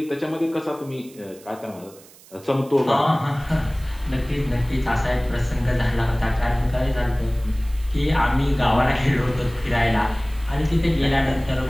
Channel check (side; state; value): right; noise; hiss, 23 dB below the sound